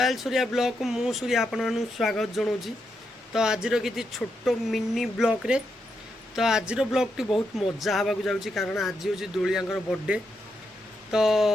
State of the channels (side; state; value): both; normal; correlation 0.82